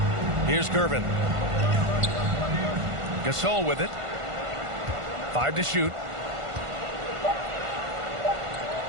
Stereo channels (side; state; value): left; late; 1.5 ms